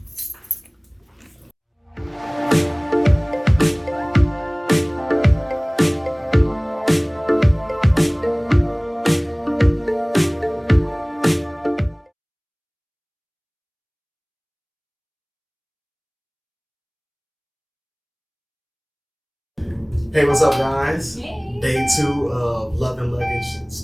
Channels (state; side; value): identical; both; correlation 1.00